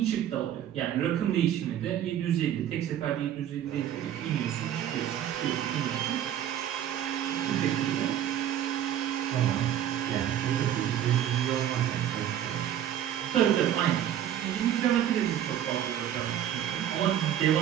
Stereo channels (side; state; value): left; quieter; 10.7 dB